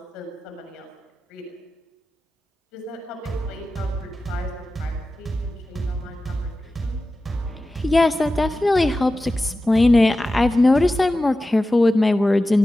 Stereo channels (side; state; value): both; normal; correlation 0.94